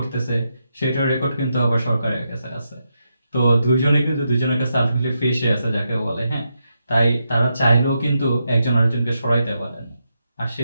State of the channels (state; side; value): inverted; both; correlation -0.84